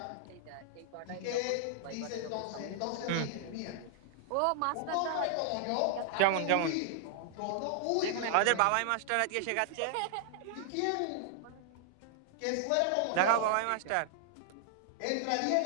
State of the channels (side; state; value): both; different; correlation -0.01